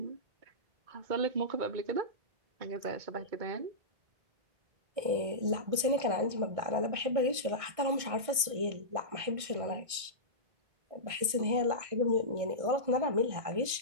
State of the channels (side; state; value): left; late; 1.6 ms